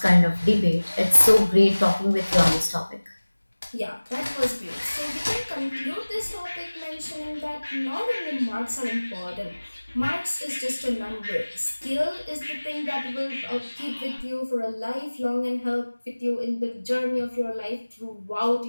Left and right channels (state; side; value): inverted; both; correlation -1.00